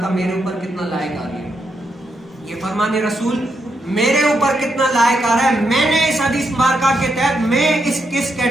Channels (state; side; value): normal; both; correlation 0.81